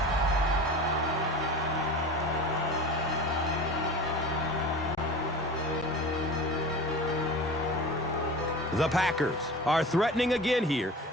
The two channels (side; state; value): both; normal; correlation 0.35